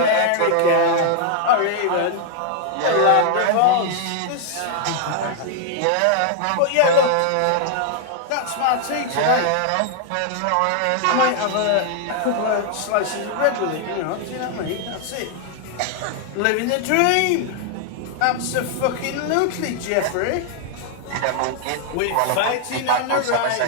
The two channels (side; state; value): both; different; correlation 0.00